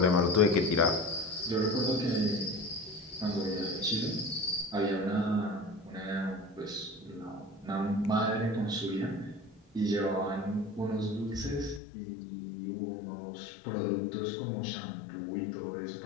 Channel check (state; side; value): drops out; right; at 11.8 s